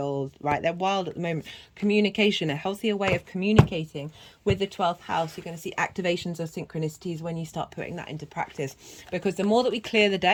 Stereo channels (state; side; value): identical; both; correlation 1.00